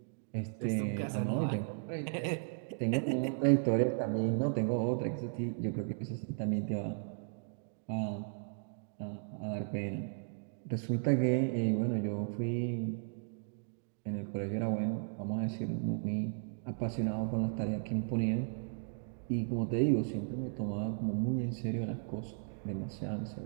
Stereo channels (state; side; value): silent; left; digital silence